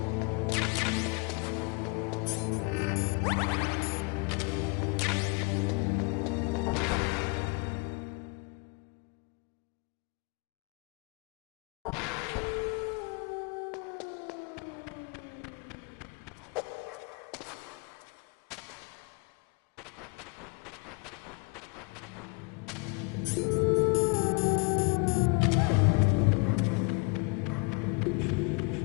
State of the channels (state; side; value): quieter; right; 31.4 dB